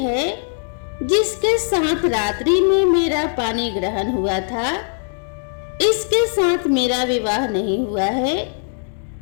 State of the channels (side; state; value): right; silent; digital silence